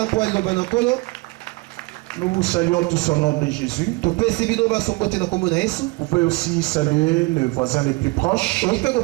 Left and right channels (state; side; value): quieter; left; 24.8 dB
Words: Nous vous saluons tous au nom de Jésus. Vous pouvez aussi saluer les voisins les plus proches.